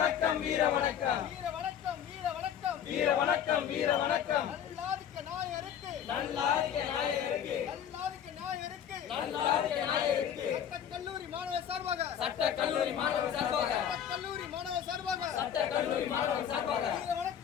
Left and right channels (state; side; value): quieter; right; 9.1 dB